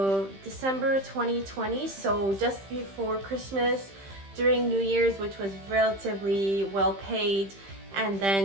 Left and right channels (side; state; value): left; late; 15 ms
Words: December 2020, so just before Christmas, during New Year's, which was relatively well paid, and